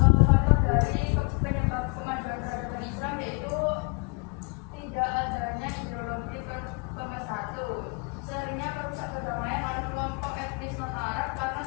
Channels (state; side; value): quieter; right; 33.8 dB